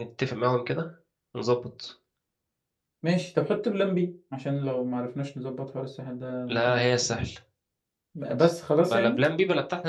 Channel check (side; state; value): both; identical; correlation 1.00